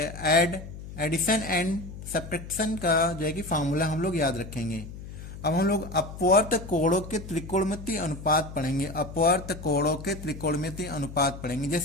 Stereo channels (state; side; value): noise; left; hum, 12 dB below the sound